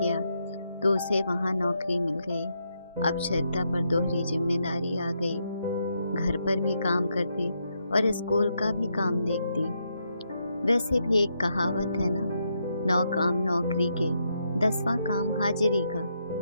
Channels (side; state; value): both; inverted; correlation -0.80